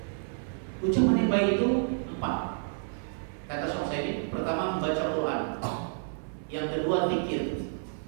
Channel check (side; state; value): left; silent; 57 dB below the other